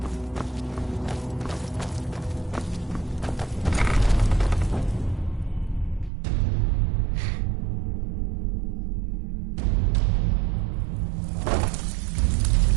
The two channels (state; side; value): drops out; left; at 6.1 s